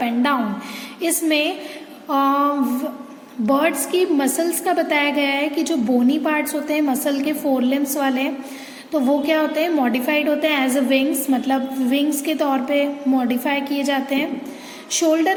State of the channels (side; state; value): both; identical; correlation 1.00